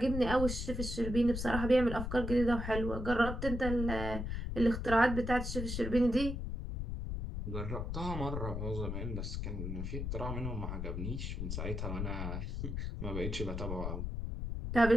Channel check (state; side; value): noise; left; rumble, 3 dB below the sound